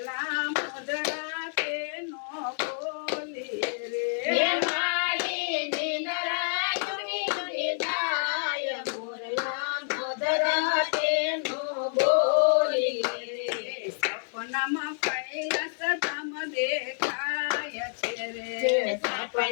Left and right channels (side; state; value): right; silent; 59 dB below the other